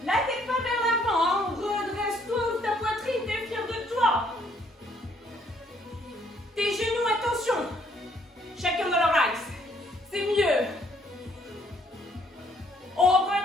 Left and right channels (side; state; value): both; normal; correlation 0.66